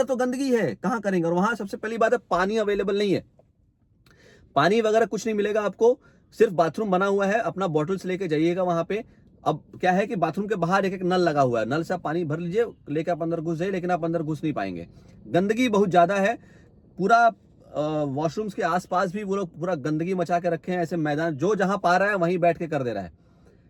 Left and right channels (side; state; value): both; identical; correlation 1.00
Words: तो गंदगी है, कहां करेंगे। और वहां सबसे पहली बात है, पानी अवेलेबल नहीं है, पानी वगैरह कुछ नहीं मिलेगा आपको, सिर्फ बाथरूम बना हुआ है। अपना बॉटल्स लेके जाइएगा वहां पे। अब क्या है कि बाथरूम के बाहर एक नल लगा हुआ है, नल से आप पानी भर लीजिए, लेके आप अंदर घुस जाइए, लेकिन आप अंदर घुस नहीं पाएंगे। गंदगी बहुत ज्यादा है, पूरा वॉशरूम्स के आसपास भी वो लोग पूरा गंदगी मचा के रखे हैं। ऐसे मैदान जो जहां पा रहा है वहीं बैठ के कर दे रहा है।